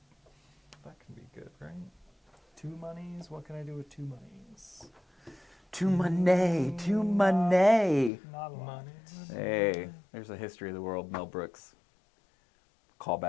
That can be good, right? 2 monies. What can I do with 2 monies? To money, to money. Not a lot. Money. Hey, there's a history of the world. Mel Brooks. Call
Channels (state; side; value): drops out; right; at 8.1 s